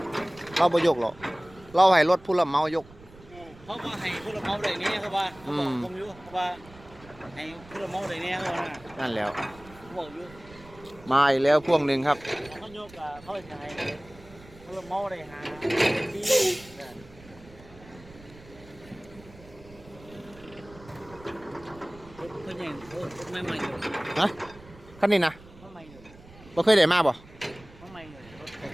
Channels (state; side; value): noise; right; rumble, 21 dB below the sound